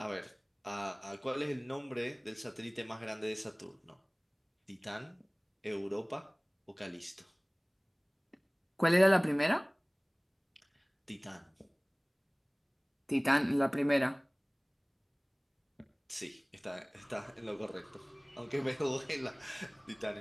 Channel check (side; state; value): both; identical; correlation 1.00